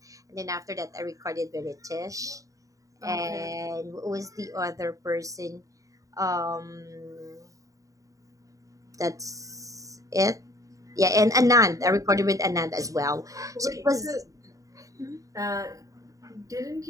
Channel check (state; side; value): late; left; 0.16 ms